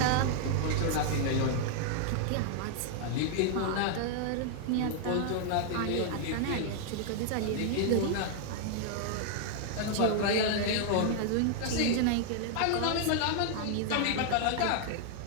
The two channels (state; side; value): different; both; correlation 0.00